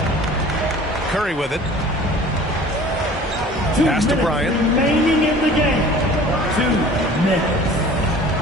Curry with it. Pass to Bryant. Remaining in the game. 2 minutes.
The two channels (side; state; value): both; normal; correlation 0.46